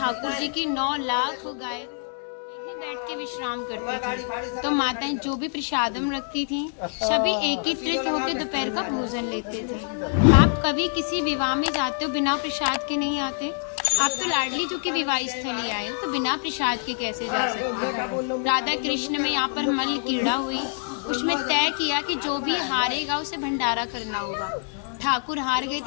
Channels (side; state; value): right; silent; 61 dB below the other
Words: जी की 9 लाख गाय यहीं बैठ के विश्राम करती थी। तो माताएं जो भी प्रसादम रखती थीं, सभी एकत्रित होकर दोपहर का भोजन लेते थे। आप कभी किसी विवाह में जाते हो बिना प्रसाद के नहीं आते? आप तो लाडली जो की विवाह स्थली आए हो, तो बिना प्रसाद के कैसे जा सकते हो? राधा कृष्ण में यहाँ पर मल्ल क्रीड़ा हुई, उसमें तय किया कि जो भी हारेगा उसे भंडारा करना होगा। ठाकुर हार गए